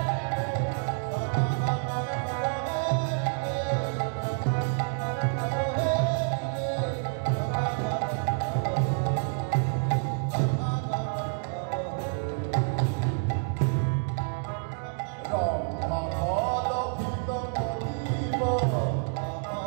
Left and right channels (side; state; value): left; silent; 59 dB below the other